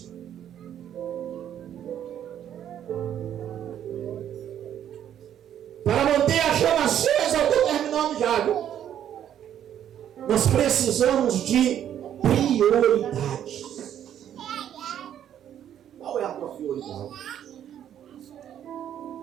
Para manter a chama acesa, eu estou terminando já, viu? Nós precisamos de prioridades. Qual é a tua prioridade?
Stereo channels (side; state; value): left; quieter; 10.2 dB